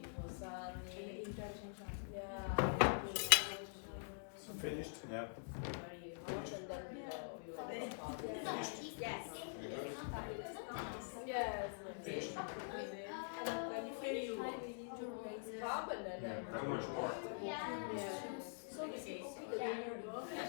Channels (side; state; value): right; silent; digital silence